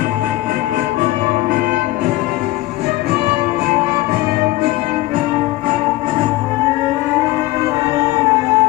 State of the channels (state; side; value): quieter; right; 18.1 dB